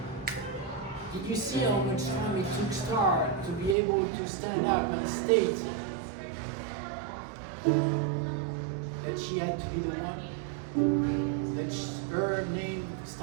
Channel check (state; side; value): drops out; left; at 3.8 s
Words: Did you see how much time it took Star to be able to stand up and state that she had to be the one? That her name